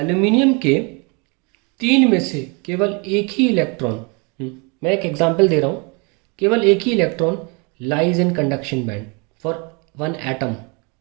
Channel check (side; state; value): left; quieter; 31.8 dB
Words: के 3 में से केवल एक ही इलेक्ट्रॉन, मैं एक एग्जांपल दे रहा हूँ, केवल एक ही electron lies in conduction band for 1 atom,